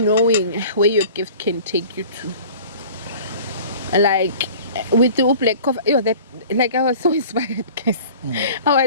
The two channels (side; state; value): both; inverted; correlation -0.44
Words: where your gift can take you to. Like with the black coffee, you know, that, like, I was so inspired, guys. I